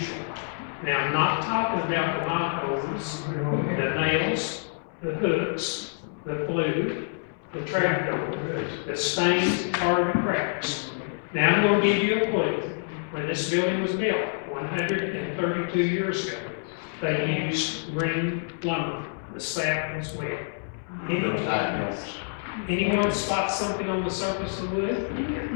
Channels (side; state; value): right; silent; 60 dB below the other